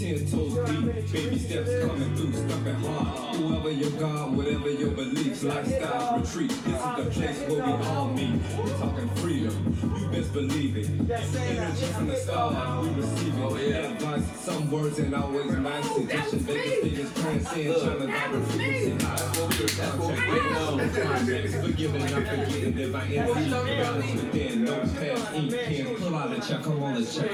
toes deep. Baby steps coming through, stumping hard. Whoever your God, whatever your beliefs, lifestyle retreat. This is the place where we all meet. We're talking freedom. You best believe it. Energy from the stars, we receive it. Oh, yeah. Advice, some words and always nice. Suggestion, Vegas figures, transcend, trying to direct frequency. That's what we waiting on. Forgiving and I'm forgetting if I envy balance within, no past ink pen. Pull out a check, I wanna check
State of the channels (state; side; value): identical; both; correlation 1.00